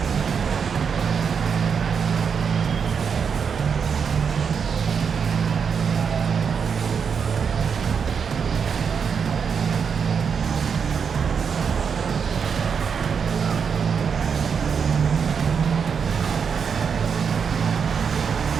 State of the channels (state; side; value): quieter; left; 6.5 dB